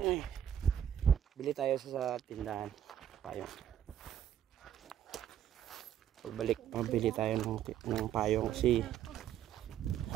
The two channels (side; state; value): left; quieter; 10.2 dB